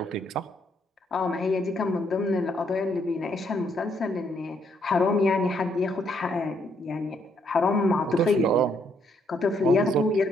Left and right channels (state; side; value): normal; both; correlation 0.72